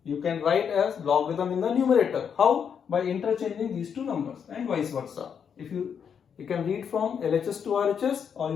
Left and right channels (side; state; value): right; quieter; 7.4 dB